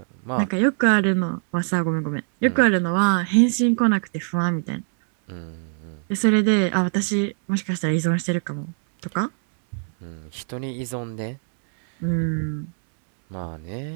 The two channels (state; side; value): silent; left; 64 dB below the other